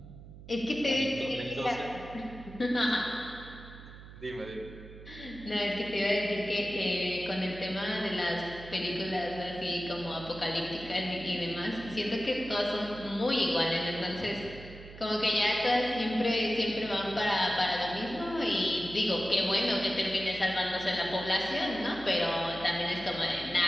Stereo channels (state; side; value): noise; right; hum, 16 dB below the sound